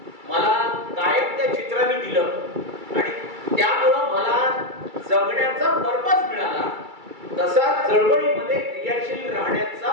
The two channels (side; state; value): left; late; 2.3 ms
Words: मला कायम त्या चित्राने दिलं आणि त्यामुळं मला जगण्याचा पर्पज मिळाला. तसा चळवळीमध्ये क्रियाशील राहण्याचा